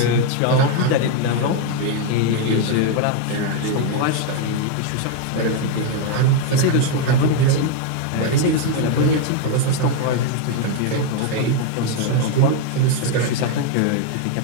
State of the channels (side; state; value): both; different; correlation 0.01